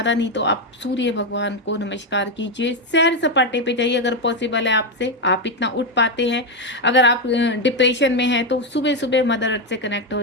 नहीं तो आप सूर्य भगवान को नमस्कार कीजिए, सैर सपाटे पे जाइए अगर पॉसिबल है आपसे, आप इतना उठ पाते हैं। अगर आप डिप्रेशन में हैं तो सुबह सुबह मदर अर्थ से कनेक्ट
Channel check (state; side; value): normal; both; correlation 0.07